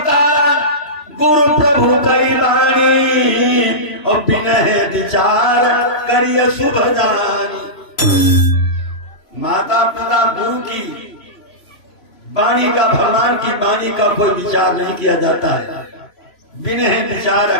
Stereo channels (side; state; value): right; late; 3.0 ms